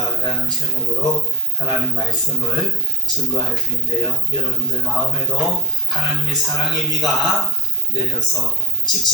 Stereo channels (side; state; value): both; normal; correlation 0.38